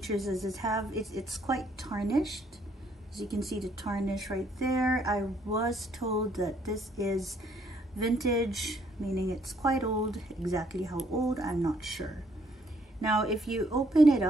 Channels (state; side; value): normal; both; correlation 0.68